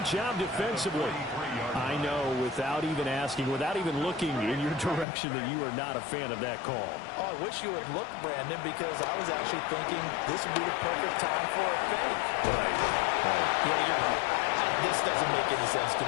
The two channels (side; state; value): right; drops out; at 5.1 s